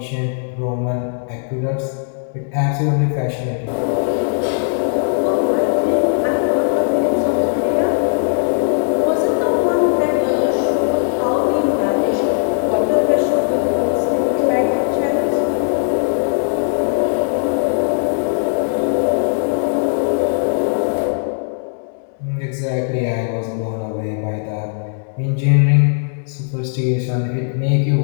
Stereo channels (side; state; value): right; silent; 65 dB below the other